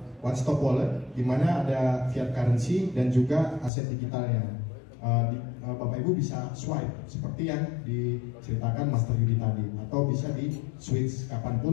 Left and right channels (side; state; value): right; drops out; at 3.7 s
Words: one stop wallet, di mana ada fiat currency dan juga aset digitalnya. Bapak Ibu bisa swipe seperti yang diceritakan Master Yudi tadi, atau bisa di switch